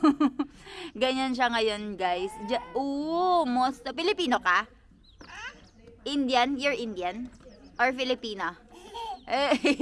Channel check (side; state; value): both; identical; correlation 1.00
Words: Ganyan siya ngayon, guys. Masta. Pilipino ka? Indian? You're Indian? Or Filipino?